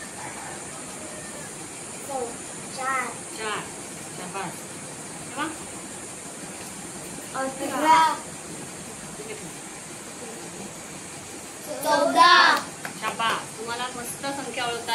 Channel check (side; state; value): both; identical; correlation 1.00